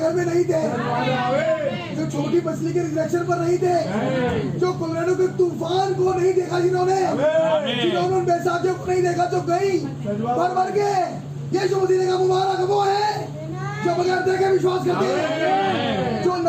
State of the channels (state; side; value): identical; both; correlation 1.00